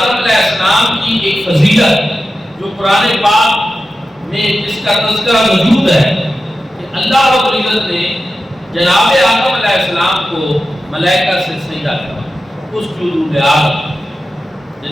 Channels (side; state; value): both; normal; correlation 0.92